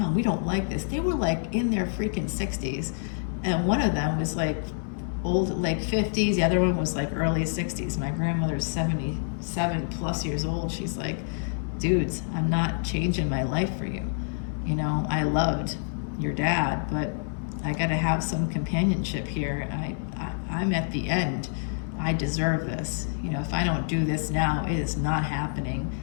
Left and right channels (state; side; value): silent; right; digital silence